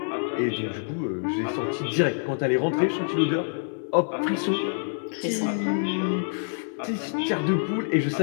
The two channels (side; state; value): right; silent; 56 dB below the other